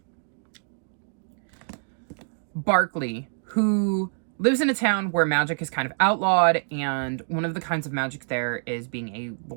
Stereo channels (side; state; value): left; silent; digital silence